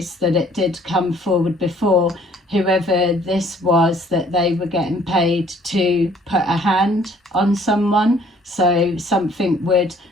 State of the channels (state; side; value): normal; both; correlation 0.58